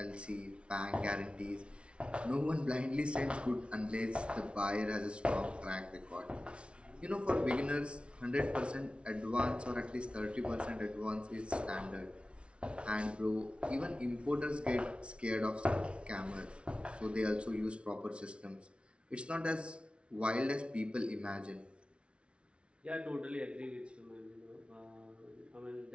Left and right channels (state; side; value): late; left; 0.059 ms